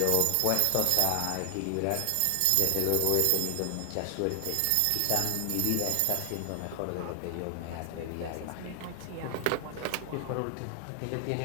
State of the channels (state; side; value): different; both; correlation 0.00